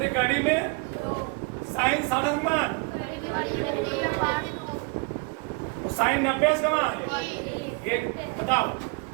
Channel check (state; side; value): quieter; left; 30.4 dB